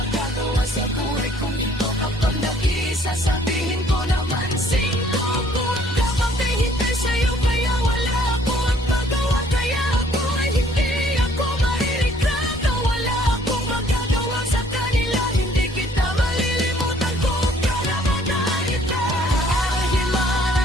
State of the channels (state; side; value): normal; both; correlation 0.60